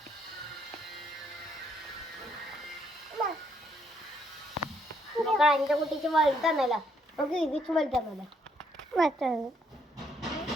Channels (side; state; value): both; normal; correlation 0.71